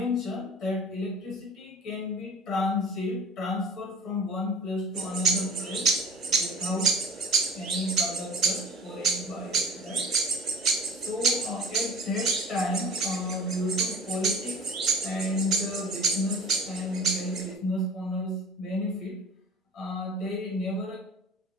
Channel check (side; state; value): both; normal; correlation 0.42